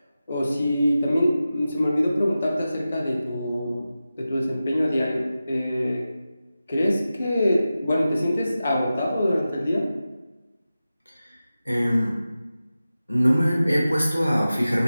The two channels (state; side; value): inverted; both; correlation -0.94